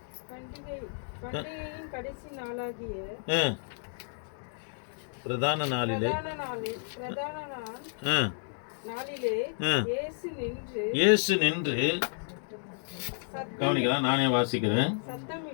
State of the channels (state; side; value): silent; right; 57 dB below the other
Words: கடைசி நாளாகிய பிரதான நாளிலே இயேசு நின்று, கவனிக்கலாம், நானே வாசிக்கிறேன்.